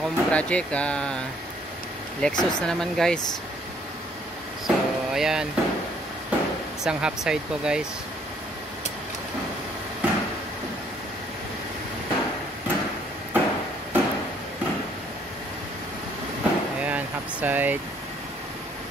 project, Lexus na naman guys. So ayan, isang half side po guys. Ayan, half side.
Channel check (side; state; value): both; normal; correlation 0.64